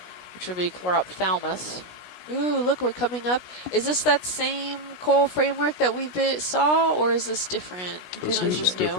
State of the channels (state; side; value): late; right; 16 ms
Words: which would be Chlorophthalmus. Ooh, look, we're coming up. Is this that same coral framework that we saw, or is this different? This I'm not is sure. just